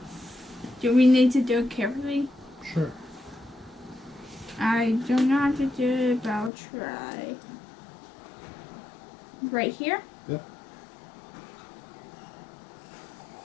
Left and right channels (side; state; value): right; drops out; at 6.5 s